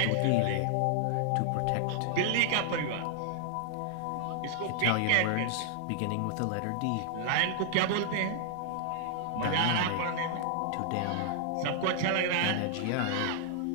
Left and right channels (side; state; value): both; different; correlation -0.01